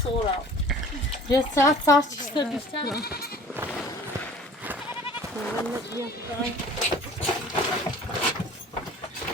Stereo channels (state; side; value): normal; both; correlation 0.47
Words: Sonra. Ya saat çıksa düşsen.